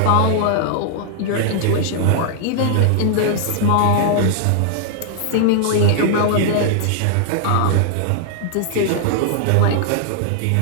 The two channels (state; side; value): different; both; correlation -0.01